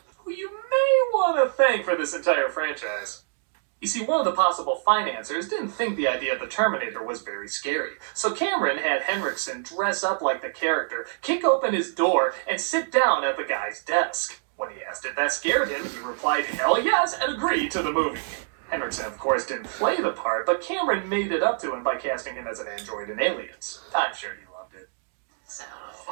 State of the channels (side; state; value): left; silent; digital silence